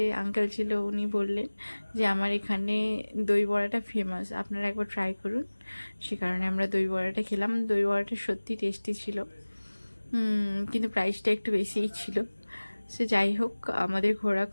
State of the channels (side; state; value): both; inverted; correlation -1.00